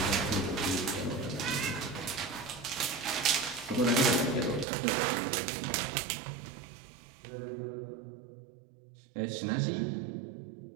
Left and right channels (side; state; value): left; drops out; at 4.7 s